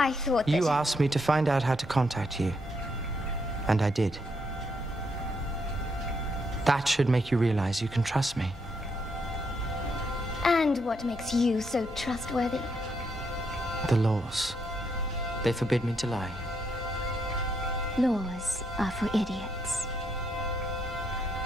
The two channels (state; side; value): normal; both; correlation 0.77